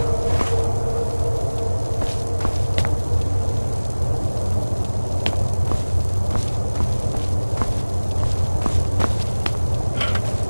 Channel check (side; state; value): both; inverted; correlation -1.00